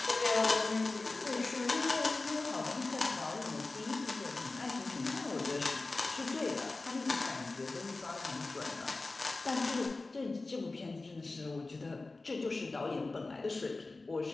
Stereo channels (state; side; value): quieter; right; 3.4 dB